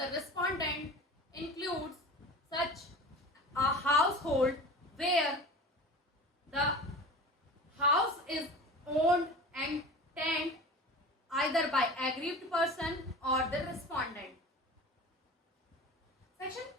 respondent includes such a household where the house is owned and tended either by aggrieved person or the respondent. Section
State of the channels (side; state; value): both; normal; correlation 0.35